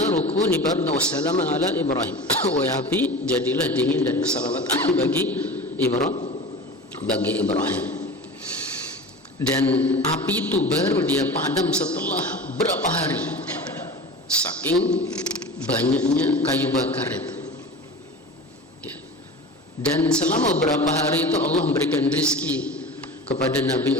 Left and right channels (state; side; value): normal; both; correlation 0.33